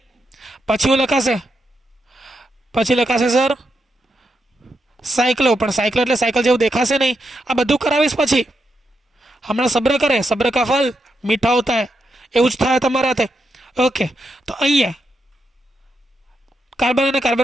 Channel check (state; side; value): normal; both; correlation 0.84